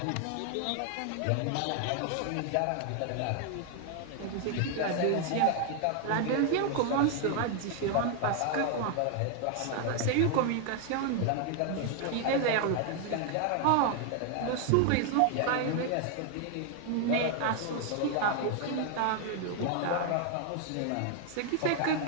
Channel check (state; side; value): different; both; correlation 0.00